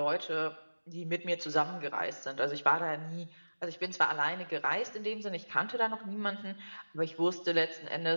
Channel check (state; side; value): inverted; both; correlation -1.00